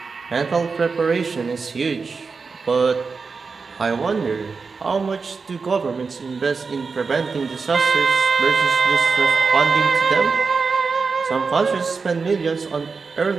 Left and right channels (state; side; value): quieter; left; 4.8 dB